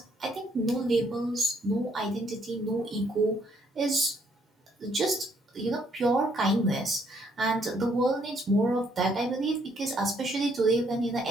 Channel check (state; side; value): normal; both; correlation 0.68